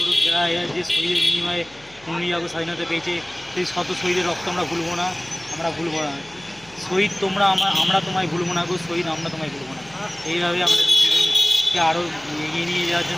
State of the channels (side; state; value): left; noise; hum, 26 dB below the sound